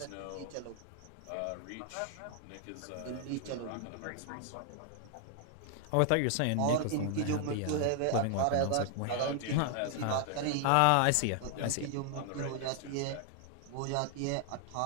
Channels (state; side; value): different; both; correlation 0.00